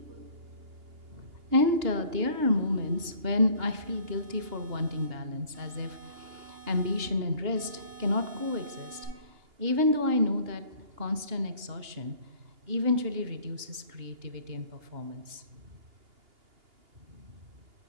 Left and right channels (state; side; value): late; left; 2.8 ms